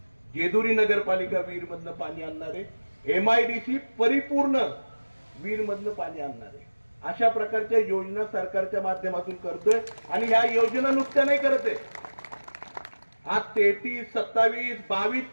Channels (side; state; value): both; inverted; correlation -1.00